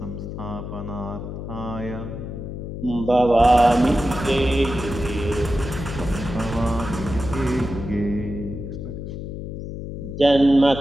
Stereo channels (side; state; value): left; noise; hum, 7 dB below the sound